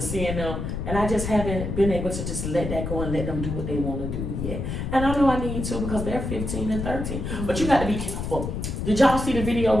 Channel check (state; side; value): noise; left; rumble, 4 dB below the sound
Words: seeing them, and I just haven't been able to just let that go and let them do what they wanna do yet. And I know I need to because they're 15 and 13, but you gotta be careful. Did y'all see the video